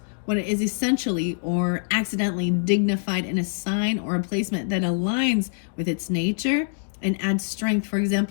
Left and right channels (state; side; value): silent; right; digital silence